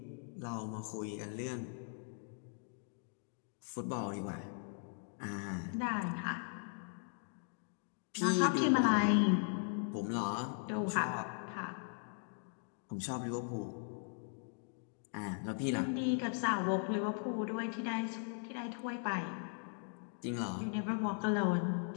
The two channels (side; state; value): right; silent; 52 dB below the other